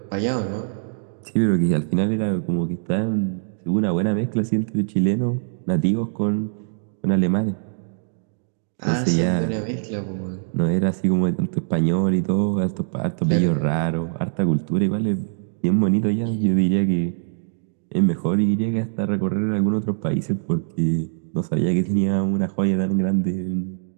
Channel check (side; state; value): left; silent; digital silence